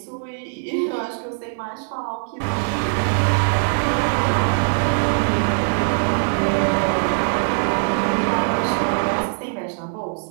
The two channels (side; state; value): left; silent; digital silence